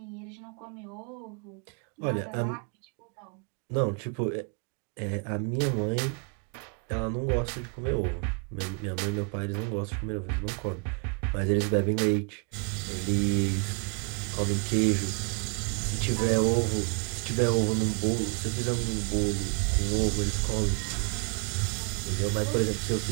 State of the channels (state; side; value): quieter; left; 37.7 dB